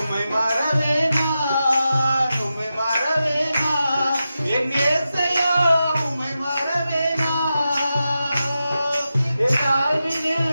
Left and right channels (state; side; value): inverted; both; correlation -0.91